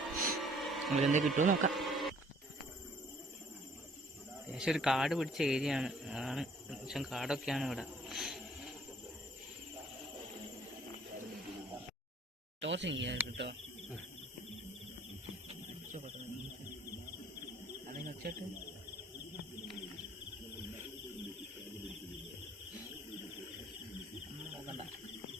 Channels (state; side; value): normal; both; correlation 0.58